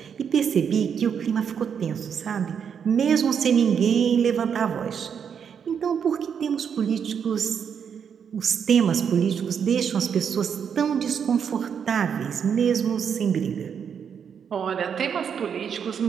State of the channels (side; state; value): left; quieter; 7.4 dB